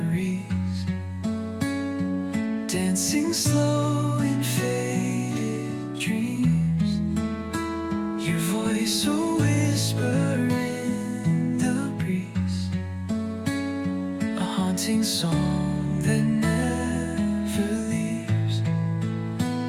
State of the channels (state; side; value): identical; both; correlation 1.00